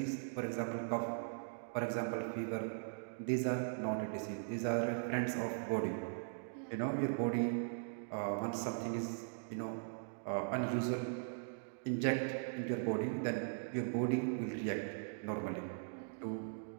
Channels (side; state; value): left; silent; digital silence